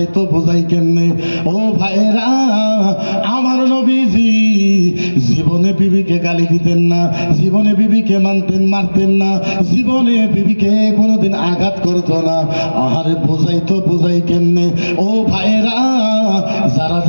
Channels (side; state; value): both; inverted; correlation -1.00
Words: বোঝাই কেমনে? ও ভাইরা, আমার নবীজি জীবনে বিবিকে গালি দিতেন না, জীবনে বিবিকে মারতেন না, জীবনে বিবিকে কোনোদিন আঘাত করতো না। আহারে বোঝাই কেমনে? ও ভাইরা,